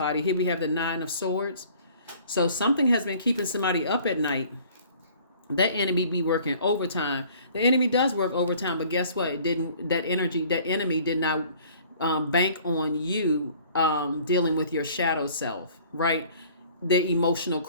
Here we have the Nine of Swords. So something has been keeping somebody up at night. That enemy be working overtime. The enemy does work overtime, but guess what? That enemy did not bank on you dealing with your shadow self, right? The emotional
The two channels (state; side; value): inverted; both; correlation -0.53